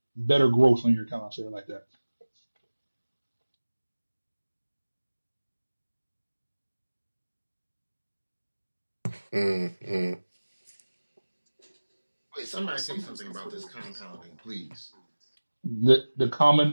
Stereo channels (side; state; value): both; inverted; correlation -1.00